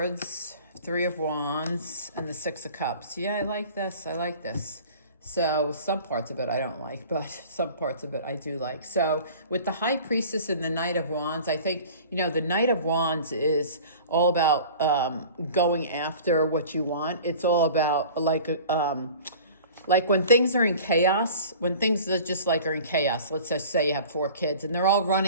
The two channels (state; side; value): inverted; both; correlation -0.43